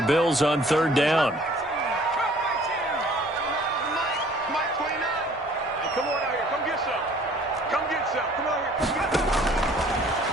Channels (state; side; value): normal; both; correlation 0.54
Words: Bills on 3rd down.